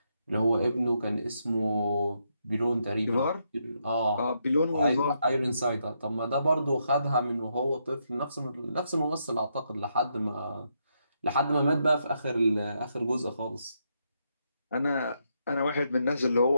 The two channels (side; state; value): both; inverted; correlation -0.79